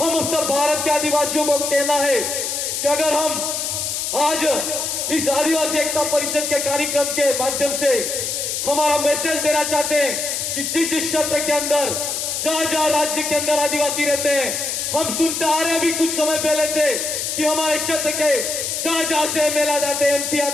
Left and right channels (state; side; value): noise; left; hiss, 2 dB below the sound